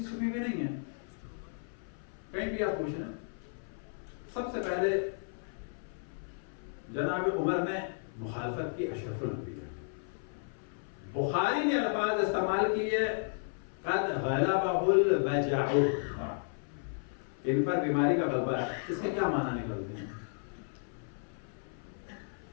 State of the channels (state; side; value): silent; right; 55 dB below the other